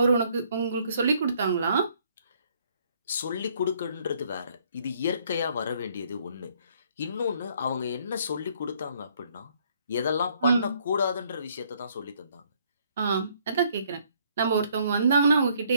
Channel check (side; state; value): both; inverted; correlation -0.65